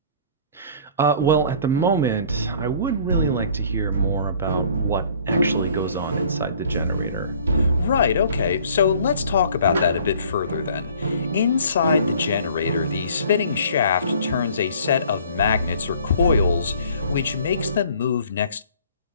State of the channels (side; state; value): both; inverted; correlation -0.53